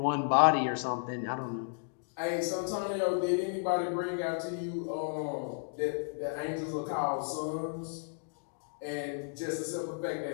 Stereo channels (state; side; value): silent; right; digital silence